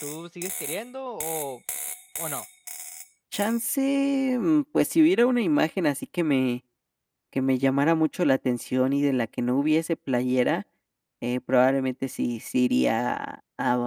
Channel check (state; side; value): identical; both; correlation 1.00